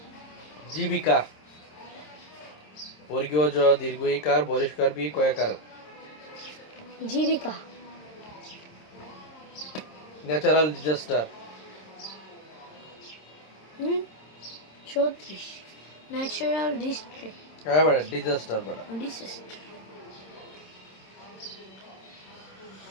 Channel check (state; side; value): late; right; 26 ms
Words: জীবিকা বর্গীয় জ দীর্ঘ ইকার বরিষ্কার বি কয়াকার জীবিকা ন্যাচারাল ডিজাস্টার 34 ন্যাচারাল ডিস্ট্রিক্ট হ্যাঁ বড় ডিজাস্টার বড় ডিসাস্টার